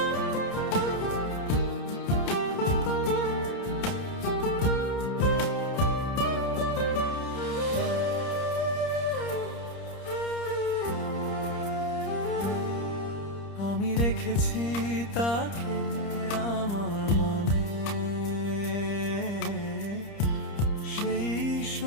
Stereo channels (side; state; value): right; late; 30 ms